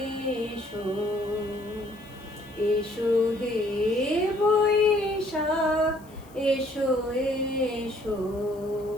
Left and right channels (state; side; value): noise; left; hiss, 27 dB below the sound